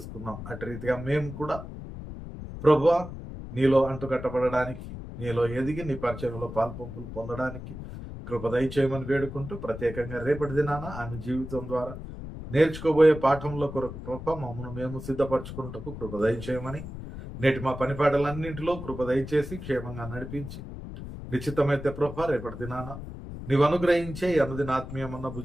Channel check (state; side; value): noise; left; rumble, 10 dB below the sound